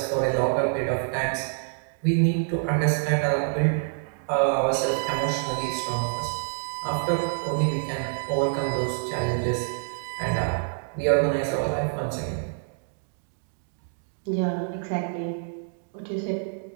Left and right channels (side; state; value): left; silent; digital silence